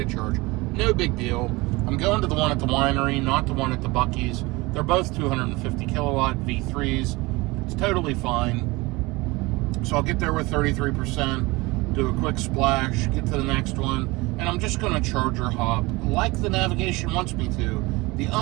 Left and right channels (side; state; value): left; quieter; 22.9 dB